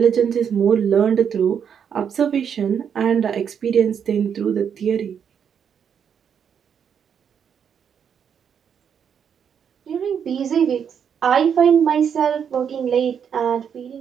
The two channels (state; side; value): quieter; left; 7.7 dB